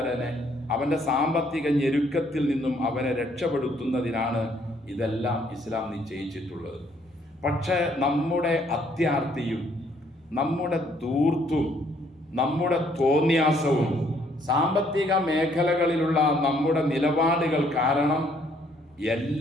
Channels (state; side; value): normal; both; correlation 0.66